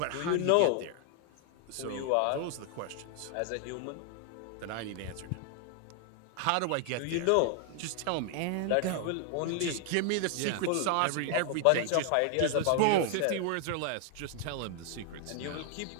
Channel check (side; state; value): both; different; correlation 0.00